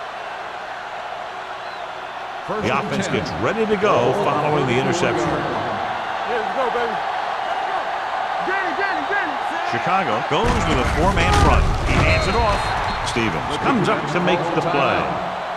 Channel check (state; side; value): identical; both; correlation 1.00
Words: The offense gets ready to go following the interception. Let's go, baby. Danny. Chicago goes with a 4-man front. He hands it off. Stevens comes up to make the play.